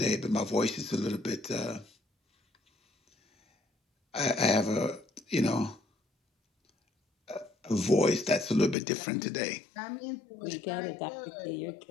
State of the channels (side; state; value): right; drops out; at 8.8 s